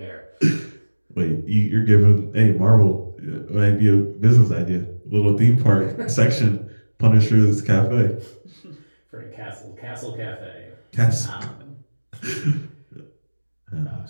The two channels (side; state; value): both; inverted; correlation -1.00